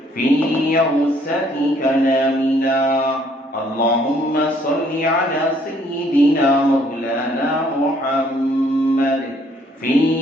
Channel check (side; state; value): both; normal; correlation 0.64